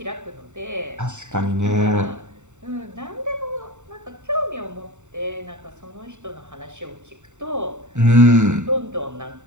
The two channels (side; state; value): left; late; 0.84 ms